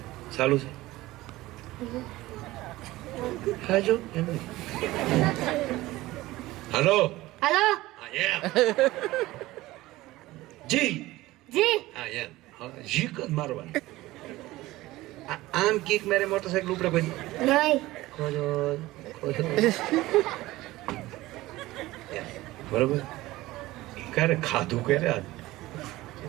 ચાલુ છે હાલો हेलो જી जी હા એમ જી કદ મારવાનું. આમ કીક મારે મોટરસાઇકલ ઉપડે પછી नहीं બરોબર. ક્યારે ખાધું ક્યારે આજ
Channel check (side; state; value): left; quieter; 18.0 dB